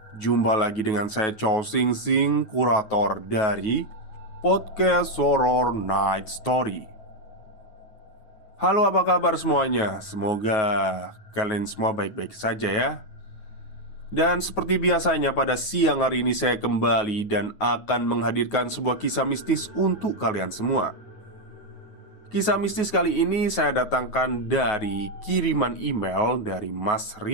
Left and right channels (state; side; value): late; right; 9.4 ms